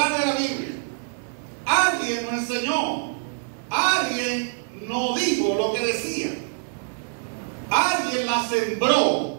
de la Biblia. Alguien nos enseñó. Alguien nos dijo lo que decía. Alguien la sembró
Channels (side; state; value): left; silent; 57 dB below the other